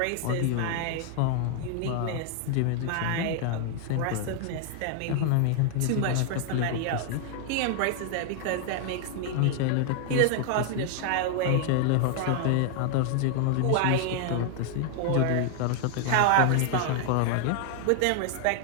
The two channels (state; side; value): different; both; correlation 0.00